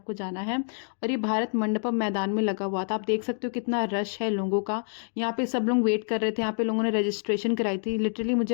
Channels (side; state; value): right; silent; 60 dB below the other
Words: जाना है। और ये भारत मंडपम मैदान में लगा हुआ था। आप देख सकते हो कितना रश है लोगों का। यहाँ पे सब लोग वेट कर रहे थे। यहाँ पे लोगों ने रजिस्ट्रेशन कराई थी। लिटरली मुझे